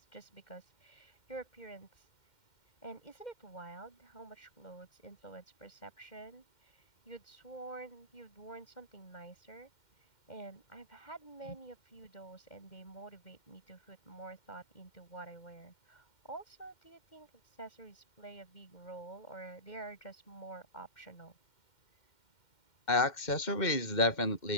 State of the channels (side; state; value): right; late; 2.1 ms